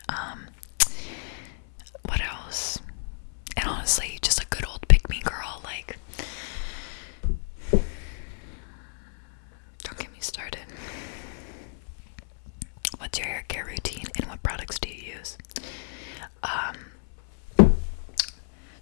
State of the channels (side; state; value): right; silent; 59 dB below the other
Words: What else? And honestly, just a good old pick me girl, like, don't get me started. What's your hair care routine, and what products do you use?